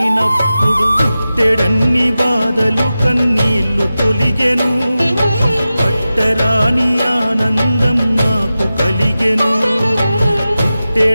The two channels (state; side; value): inverted; both; correlation -0.94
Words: పుట్టెడన్ని బాధలు కన్నీళ్లు తొలిగెను, పట్టరాని ఆనందం నాకు కలిగెను.